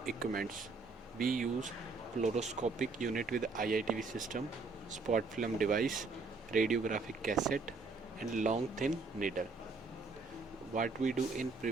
equipments. We use fluoroscopic unit with IITV system, spot film device, radiographic cassette and long thin needle. What we do in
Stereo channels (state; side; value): quieter; left; 4.1 dB